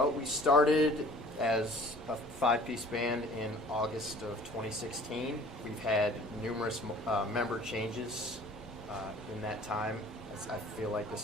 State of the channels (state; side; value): normal; both; correlation 0.49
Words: we started as a 5-piece band in August of 2016. We've had numerous member changes in that time. I feel like